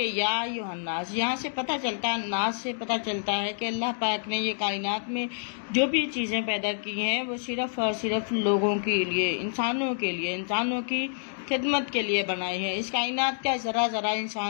یا ایھا الناس، یہاں سے پتہ چلتا ہے، ناس سے پتہ چلتا ہے کہ اللہ پاک نے یہ کائنات میں جو بھی چیزیں پیدا کی ہیں وہ صرف اور صرف لوگوں کے لیے، انسانوں کے لیے، انسانوں کی خدمت کے لیے بنائی ہے۔ اس کائنات کا ذرا ذرا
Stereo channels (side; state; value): right; silent; digital silence